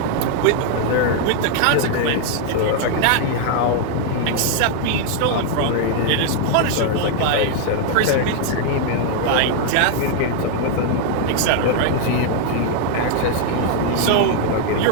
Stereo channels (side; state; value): both; different; correlation 0.00